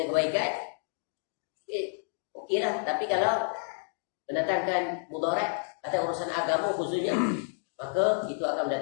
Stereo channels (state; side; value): silent; right; digital silence